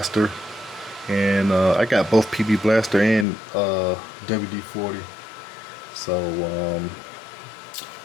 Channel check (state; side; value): drops out; right; at 3.2 s